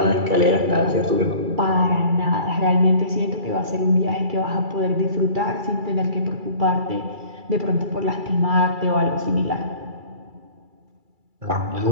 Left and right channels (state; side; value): late; left; 2.3 ms